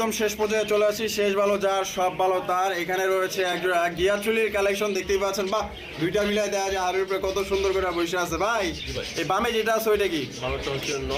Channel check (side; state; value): both; identical; correlation 1.00